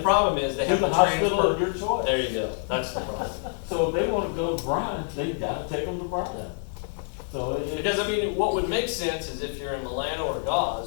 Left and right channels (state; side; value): silent; right; 61 dB below the other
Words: problem is they to have the to hospital transfer. of your choice. There you go. That's the problem. So if they wanna go to Bryan, they've gotta take them to Bryan. Yeah. So Because I mean, what would make sense is if you're in Milano or